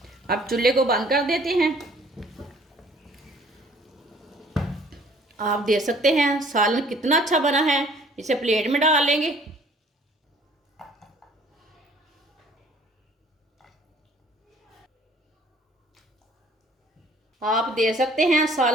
अब चूल्हे को बंद कर देते हैं। आप देख सकते हैं सालन कितना अच्छा बना है। इसे प्लेट में डाल लेंगे। आप देख सकते हैं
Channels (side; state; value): both; normal; correlation 0.56